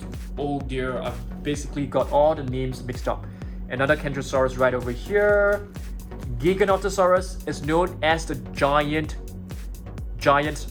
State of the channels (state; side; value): identical; both; correlation 1.00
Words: oh dear, I've basically got all the names mixed up. Another Carnotaurus right over here. Geekonotosaurus is known as the giant